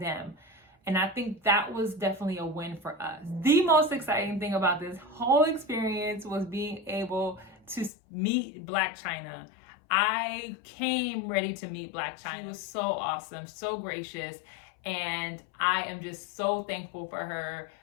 And I think that was definitely a win for us. The most exciting thing about this whole experience was being able to meet Black China. I came ready to meet Black China. She was so awesome, so gracious, and I am just so thankful for her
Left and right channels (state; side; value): drops out; right; at 7.9 s